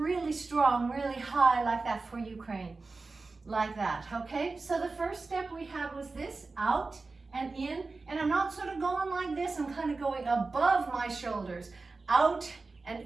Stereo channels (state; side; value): quieter; left; 3.8 dB